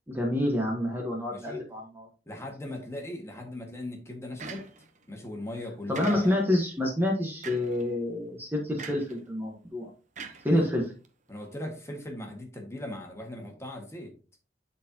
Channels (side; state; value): both; normal; correlation 0.75